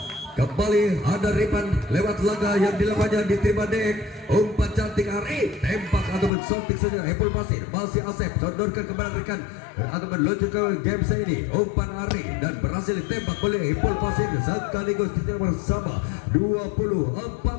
kembali ada Ripan lewat laga yang dilakukannya diterima Dek umpan cantik Ari tembak ataupun sontik saja Epul Pasir masih Asep sodorkan kembali rekan ataupun lucu ke GMC ini umpan Ari dan berhasil ditembak oleh Epul Pasir sekaligus kita bersama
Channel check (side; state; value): right; drops out; at 6.3 s